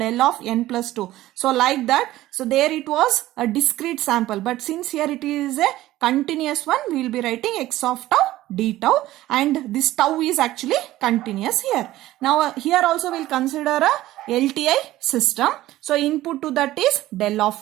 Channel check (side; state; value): left; quieter; 15.6 dB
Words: of n plus 2. So like that. So there it was a discrete sample, but since here it is a continuous one, we will be writing x of tau d tau, and this tau is actually continuous here. Now here also we'll consider a LTI system. So input to that is del